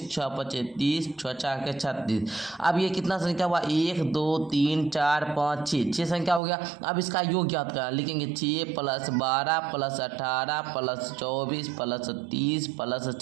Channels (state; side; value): drops out; left; at 6.4 s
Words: 6 5 30, 6 4 36। अब ये कितना संख्या हुआ, 1 2 3 4 5 6 संख्या हो गया। अब इसका योग ज्ञात करना, लिखेंगे 6 + 12 + 18 + 24 + 30 +